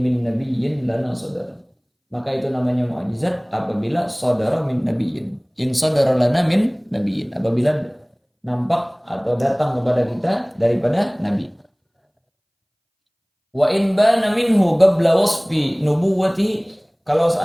min nabiyyin lana sadar. Maka itu namanya mukjizat apabila saudara min nabiyyin. In saudara lana min nabiyyin. Apabila nampak atau datang kepada kita daripada nabi. Wa in bana minhu qabla wasfi nubuwwati. Kalau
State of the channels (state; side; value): identical; both; correlation 1.00